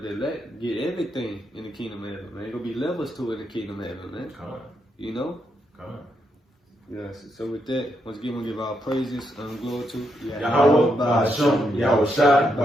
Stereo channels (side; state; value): both; normal; correlation 0.80